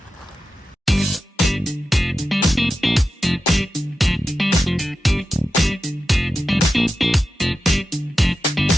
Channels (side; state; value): both; normal; correlation 0.91